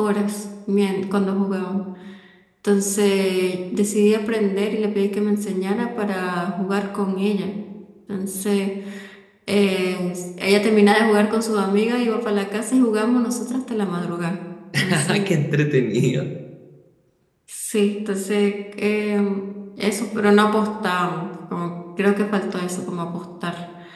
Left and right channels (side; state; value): both; identical; correlation 1.00